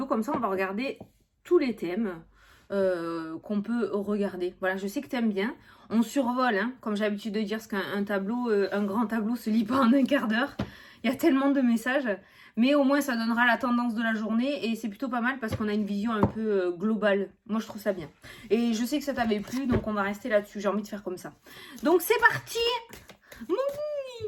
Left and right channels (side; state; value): both; identical; correlation 1.00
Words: comme ça on va regarder tous les thèmes qu'on peut regarder. Voilà, je sais que tu aimes bien. On survole, hein, comme j'ai l'habitude de dire, parce qu'un tableau, un grand tableau se lit pas en un quart d'heure. Il y a tellement de messages. Mais au moins, ça donnera la tendance de la journée. Et c'est plutôt pas mal parce qu'on a une vision un peu globale. Moi, je trouve ça bien. Et je sais que ça t'avait plu, donc on va rester là-dessus. J'ai envie de faire comme ça. Donc, c'est parti.